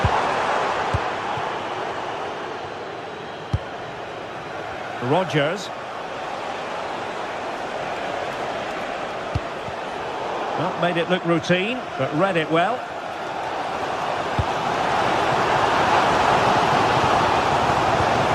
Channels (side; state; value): both; identical; correlation 1.00